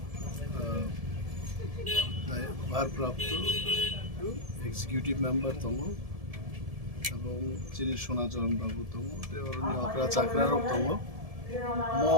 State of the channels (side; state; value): left; late; 1.7 ms